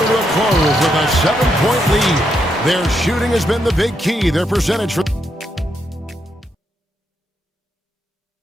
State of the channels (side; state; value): both; normal; correlation 0.80